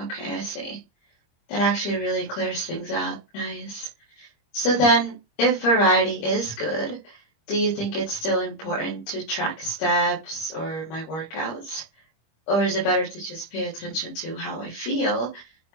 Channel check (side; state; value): right; late; 25 ms